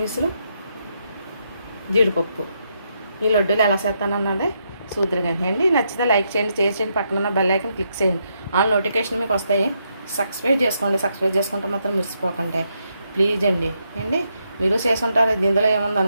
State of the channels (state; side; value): inverted; both; correlation -0.79